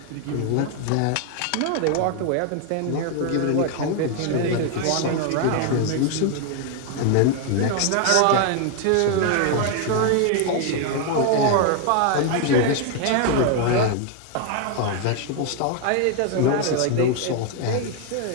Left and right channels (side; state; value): both; different; correlation 0.01